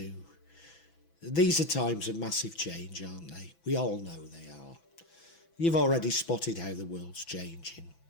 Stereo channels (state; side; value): late; right; 6.0 ms